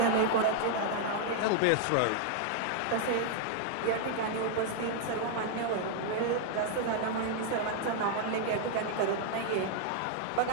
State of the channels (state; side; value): different; both; correlation 0.00